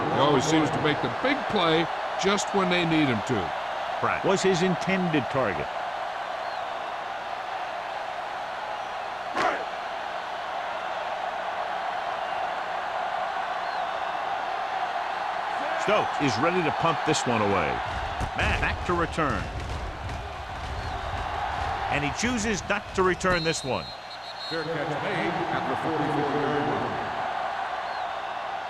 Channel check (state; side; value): identical; both; correlation 1.00